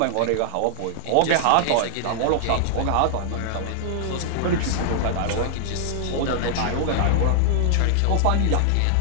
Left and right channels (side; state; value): both; different; correlation -0.01